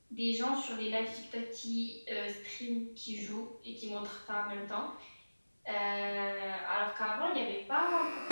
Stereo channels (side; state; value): both; inverted; correlation -1.00